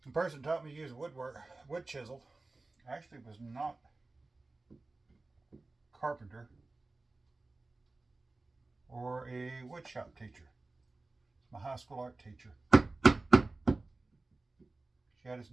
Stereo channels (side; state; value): left; quieter; 3.3 dB